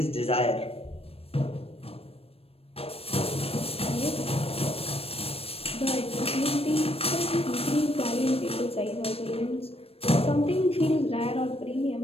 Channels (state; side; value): late; right; 0.28 ms